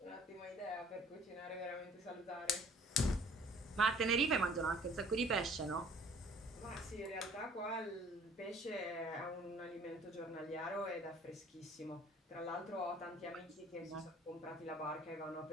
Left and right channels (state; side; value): normal; both; correlation 0.53